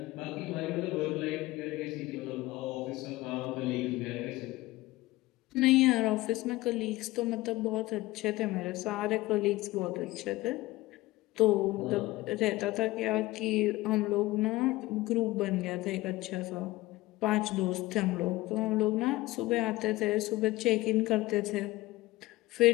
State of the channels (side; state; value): right; quieter; 18.9 dB